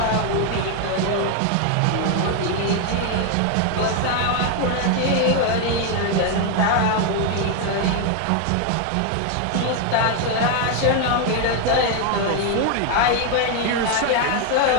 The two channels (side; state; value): both; different; correlation 0.01